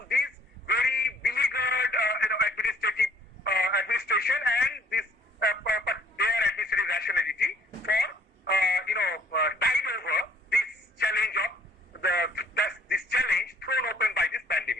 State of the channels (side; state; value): both; normal; correlation 0.59